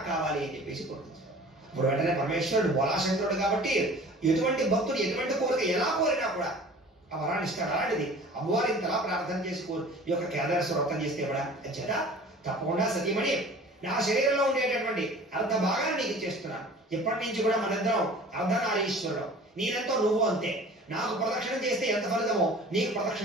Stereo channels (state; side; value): normal; both; correlation 0.44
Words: కావాలి అని చెప్పేసి కోరుకుంటాడు. ఇప్పుడు వెంటనే పరమేశ్వరుడు బోలాశంకరుడు కాబట్టి ఎటువంటి భక్తుడు ఎటువంటి కోరిక ఎలా కోరినా కూడా ఆ వరాన్ని ఇస్తాడు. అలాంటిది అమ్మవారు ఇంతలా ప్రార్థన చేసి ఈ యొక్క కేదారేశ్వర వ్రతం చేస్తే కూడా చేత తప్పకుండా సతీమణి నా శరీరంలో ఉండేటటువంటి అర్ధ భాగాన్ని నీకు ఇచ్చేస్తున్నాను. ఇప్పటి నుంచి కూడా మనిద్దరం అర్ధనారీశ్వరుడు, నేనెంతో నువ్వు అంతే. నాకు ప్రదక్షిణం చేస్తే ఎంత ఫలితమో నీకు